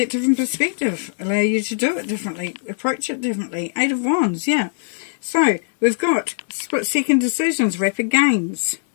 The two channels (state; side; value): silent; right; digital silence